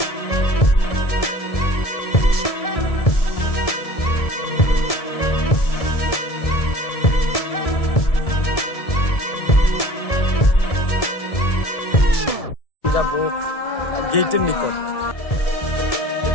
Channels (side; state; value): right; late; 1.7 ms